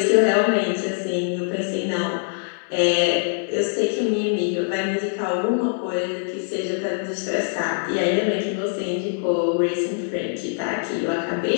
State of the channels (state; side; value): silent; right; 60 dB below the other